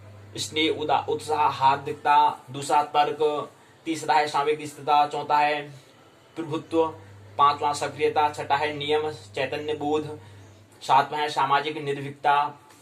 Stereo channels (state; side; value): identical; both; correlation 1.00